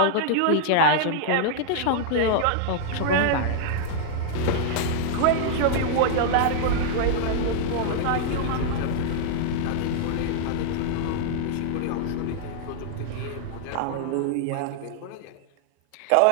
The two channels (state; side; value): different; both; correlation -0.01